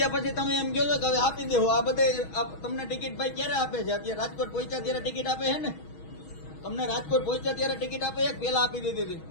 પછી તમે એમ કહો છો કે હવે આપી દેવો. આ બધે તમને ટિકિટ ભાઈ ક્યારે આપે છે? અત્યારે રાજકોટ પહોંચ્યા ત્યારે ટિકિટ આપે છે ને? તમને રાજકોટ પહોંચ્યા ત્યારે ટિકિટ આપે છે? પેલા આપી દીધી હતી?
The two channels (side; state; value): right; late; 6.3 ms